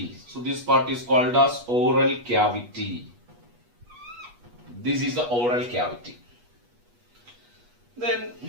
So this part is called as oral cavity. This is the oral cavity. Then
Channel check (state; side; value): late; left; 8.3 ms